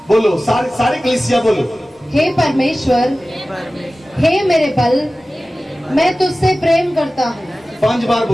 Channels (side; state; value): both; normal; correlation 0.96